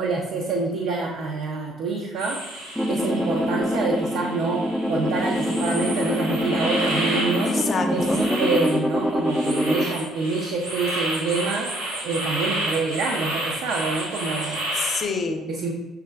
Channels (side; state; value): both; normal; correlation 0.65